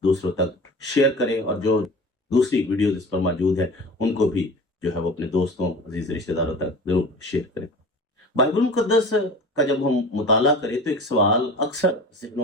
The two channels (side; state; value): both; normal; correlation 0.38